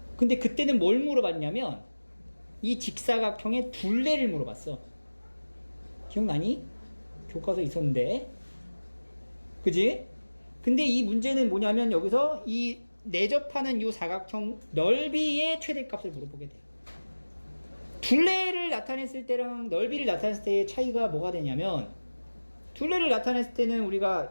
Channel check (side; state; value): both; inverted; correlation -1.00